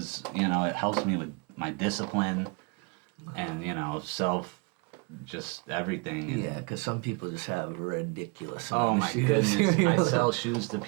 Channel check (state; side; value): quieter; left; 31.4 dB